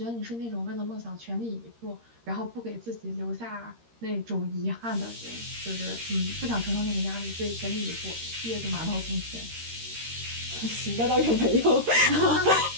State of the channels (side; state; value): left; late; 13 ms